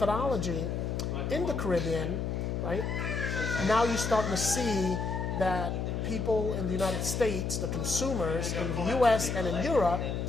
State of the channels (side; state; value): left; noise; hum, 1 dB below the sound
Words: in the Caribbean, right, now you're starting to see that people in the United States, the consumers in the U.S. and in Europe,